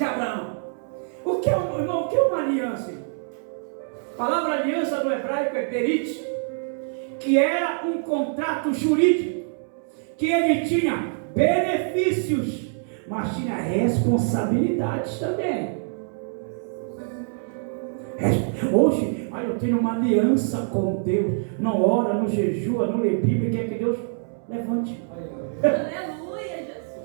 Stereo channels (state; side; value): silent; left; 62 dB below the other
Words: Abraão. O que é, irmão, o que é uma aliança? A palavra aliança no hebraico é berit, que era um contrato jurídico, que ele tinha benefícios, mas tinha responsabilidades também. Hoje, eu tenho uma aliança com Deus, não ora, não jejua, não lê Bíblia, quer que Deus levante. Aleluia,